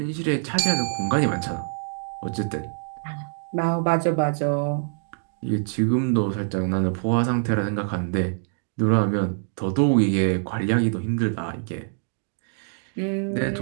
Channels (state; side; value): silent; left; digital silence